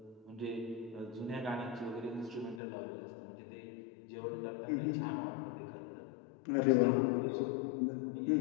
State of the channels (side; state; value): right; drops out; at 2.6 s